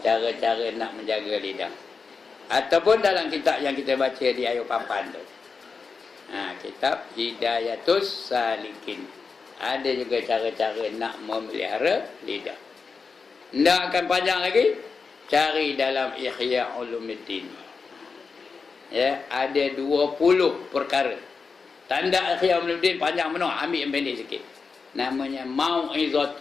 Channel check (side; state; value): right; quieter; 4.9 dB